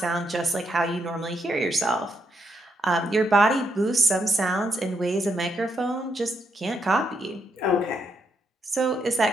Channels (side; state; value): both; normal; correlation 0.79